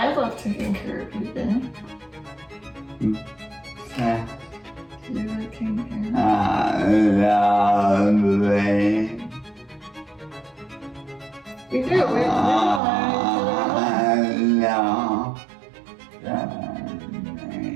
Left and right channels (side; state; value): left; drops out; at 12.8 s